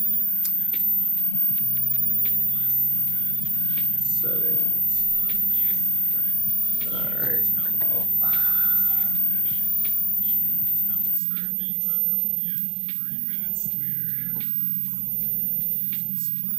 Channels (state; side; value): drops out; left; at 11.2 s